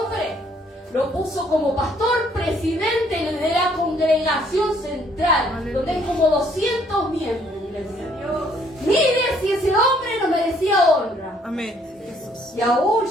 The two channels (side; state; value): both; normal; correlation 0.64